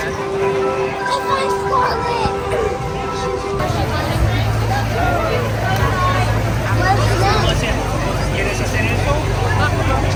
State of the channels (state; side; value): identical; both; correlation 1.00